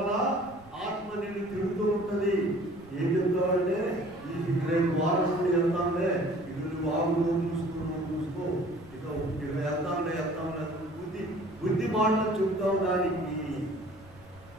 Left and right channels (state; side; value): noise; right; rumble, 25 dB below the sound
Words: ఆత్మ నేను తిరుగుతూ ఉంటుంది. ఏం చెప్తావంటే ఈ రేపు వారం నుండి వెళ్తాంలే, ఇది నువ్వు ఆగులో చూసుకో, ఇక వెళ్తాంలే బుద్ధి మాటలు చెప్తావు. దానికి